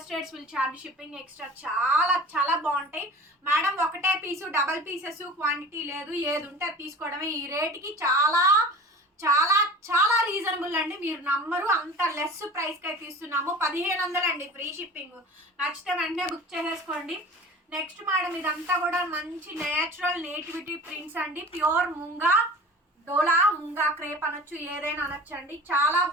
states will charge shipping extra. చాలా చాలా బాగుంటాయి మేడం. ఒకటే పీసు, డబల్ పీసెస్, క్వాంటిటీ లేదు. ఏది ఉంటే అది తీసుకోవడమే. ఈ రేట్కి చాలా చాలా చాలా రీజనబుల్ అండి. మీరు నమ్మరు, అంత లెస్ ప్రైస్కి అయితే ఇస్తున్నాము. 1500 అండి ఫ్రీ షిప్పింగ్. నచ్చితే వెంటనే బుక్ చేసేసుకోండి. నెక్స్ట్ మేడం ఇదంతా కూడా మంచి నేచురల్ నేటివిటీ ప్రింట్స్ అండి. ప్యూర్ ముంగా డోలా, ముంగా క్రేప్ అనొచ్చు, ఏదైనా అనొచ్చండి. చాలా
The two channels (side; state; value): both; normal; correlation 0.39